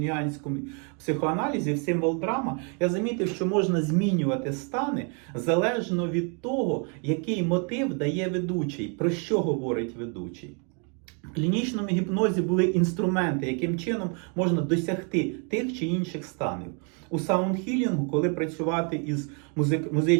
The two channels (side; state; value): left; quieter; 37.7 dB